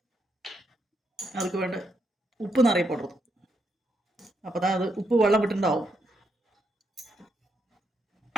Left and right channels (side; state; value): both; normal; correlation 0.79